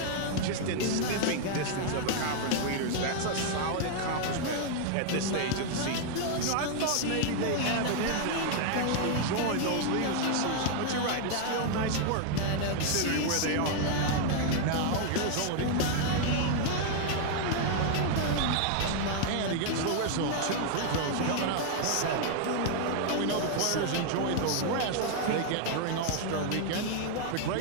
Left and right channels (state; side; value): different; both; correlation 0.00